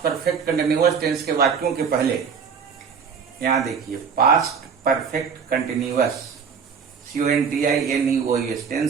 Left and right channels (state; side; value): quieter; left; 6.4 dB